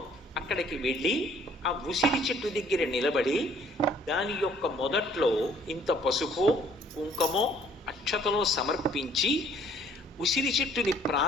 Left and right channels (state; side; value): normal; both; correlation 0.59